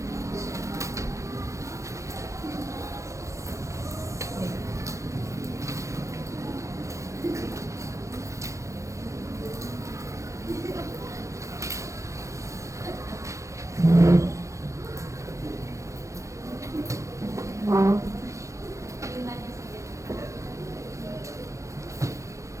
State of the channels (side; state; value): left; late; 0.15 ms